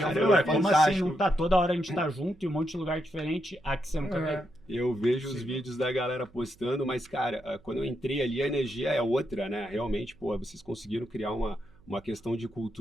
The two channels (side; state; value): right; noise; hum, 27 dB below the sound